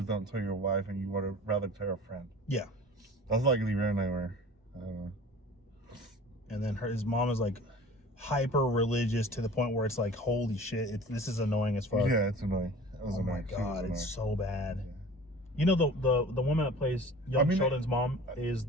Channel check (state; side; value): normal; both; correlation 0.42